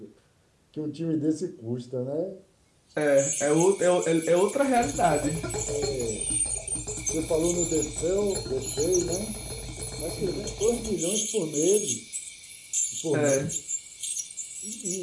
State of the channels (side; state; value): both; identical; correlation 1.00